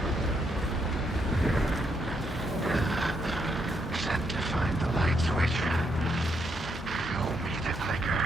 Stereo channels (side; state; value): both; normal; correlation 0.77